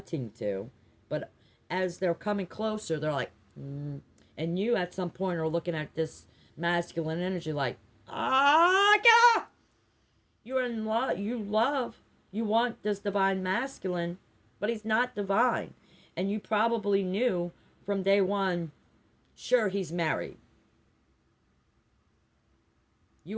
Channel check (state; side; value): identical; both; correlation 1.00